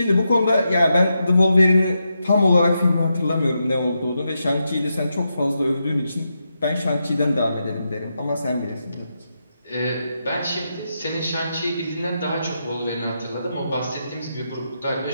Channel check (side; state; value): both; inverted; correlation -0.85